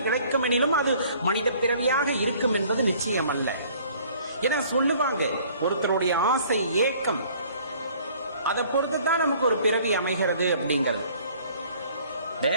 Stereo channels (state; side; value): inverted; both; correlation -0.55